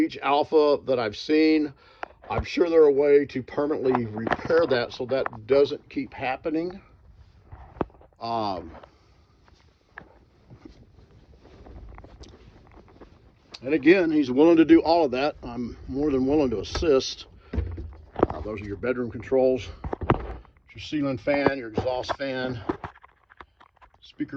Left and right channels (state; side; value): identical; both; correlation 1.00